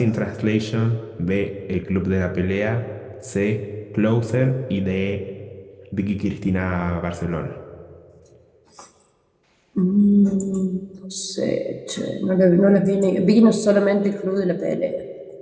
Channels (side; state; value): both; identical; correlation 1.00